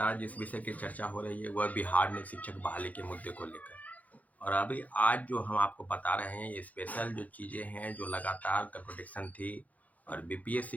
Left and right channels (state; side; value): late; right; 0.076 ms